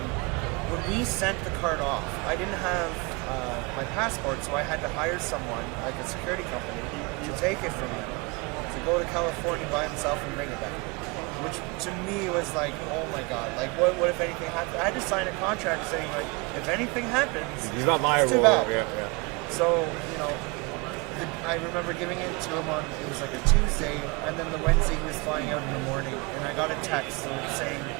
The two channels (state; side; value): quieter; left; 28.1 dB